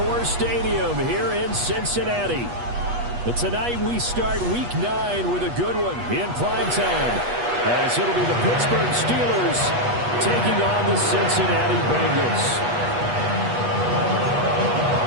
Stadium here in Cincinnati. But tonight we start Week 9 with a good one in primetime, as it'll be the Pittsburgh Steelers taking on the Cincinnati Bengals.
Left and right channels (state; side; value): late; left; 8.3 ms